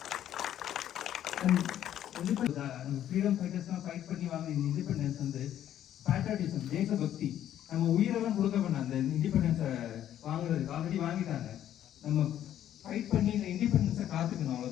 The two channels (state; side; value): quieter; right; 11.2 dB